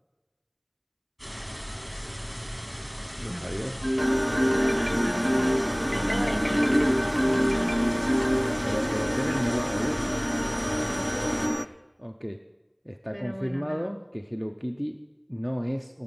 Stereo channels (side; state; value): both; identical; correlation 1.00